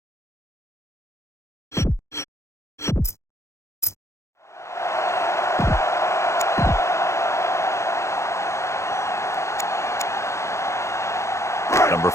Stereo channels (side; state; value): right; late; 0.14 ms